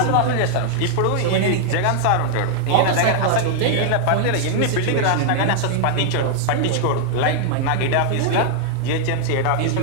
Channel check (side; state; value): both; different; correlation -0.01